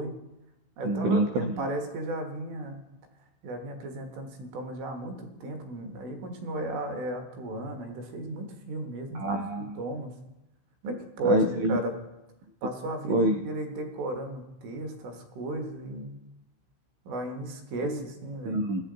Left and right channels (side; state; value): left; late; 16 ms